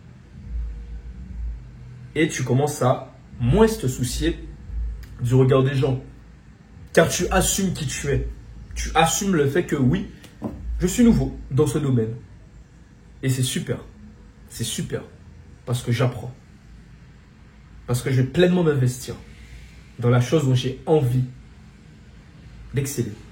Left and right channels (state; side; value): identical; both; correlation 1.00